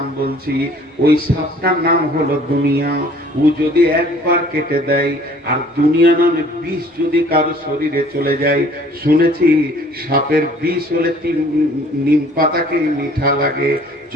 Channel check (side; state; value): both; normal; correlation 0.54